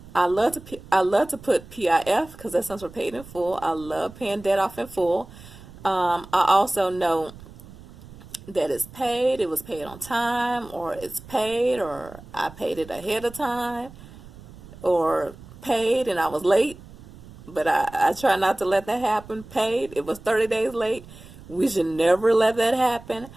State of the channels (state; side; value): noise; right; rumble, 19 dB below the sound